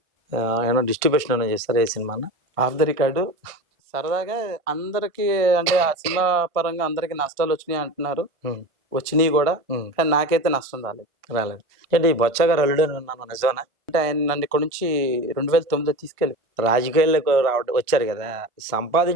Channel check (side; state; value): left; late; 1.4 ms